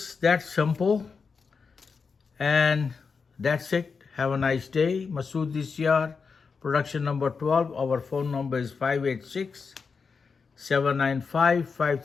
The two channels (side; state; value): right; quieter; 5.2 dB